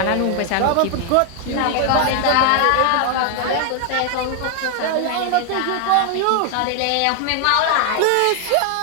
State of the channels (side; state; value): both; different; correlation 0.00